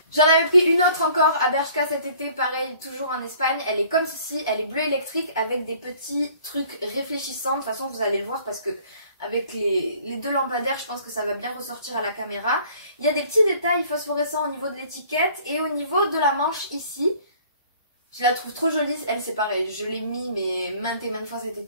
J'en avais pris une autre encore à Bershka cet été, pareil, toujours en Espagne. Elle est comme ceci, elle est bleue électrique avec des petits trucs réfléchissants. De toute façon, vous allez le voir parce que avec les deux lampadaires, je pense que ça va bien ressortir à la caméra. Il y a des petits détails phosphorescents au niveau de l'étiquette et au niveau de la manche ici. Je la trouve trop jolie, elle c'est pareil, je l'ai mis mais maintes et maintes fois cet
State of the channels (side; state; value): both; inverted; correlation -0.55